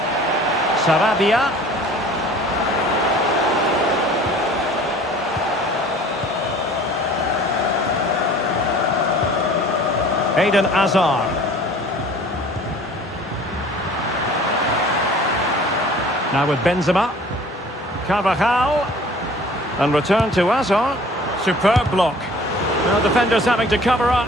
Sarabia. Eden Hazard. Now with Benzema. Carvajal. And return to Hazard. Superb block. Now defenders having to cover up.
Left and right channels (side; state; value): both; normal; correlation 0.48